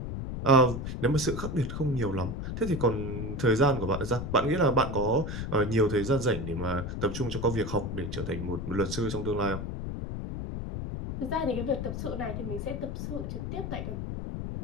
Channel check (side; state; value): left; noise; rumble, 5 dB below the sound